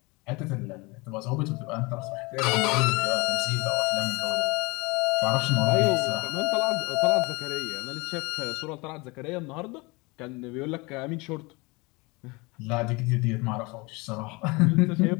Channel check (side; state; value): right; quieter; 26.0 dB